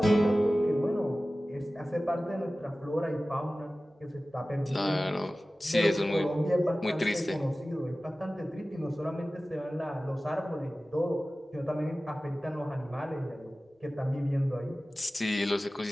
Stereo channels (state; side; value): normal; both; correlation 0.96